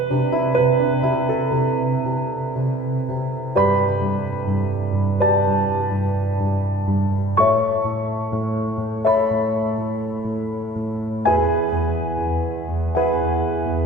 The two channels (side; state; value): both; normal; correlation 0.52